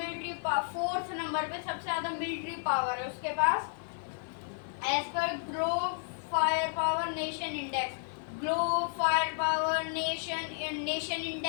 पावर, फोर्थ नंबर पे सबसे ज्यादा मिलिट्री पावर है उसके पास एज पर globe fire power nation index. Globe fire power nation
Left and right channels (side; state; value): right; silent; digital silence